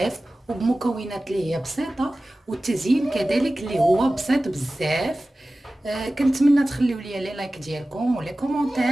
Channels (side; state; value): both; normal; correlation 0.96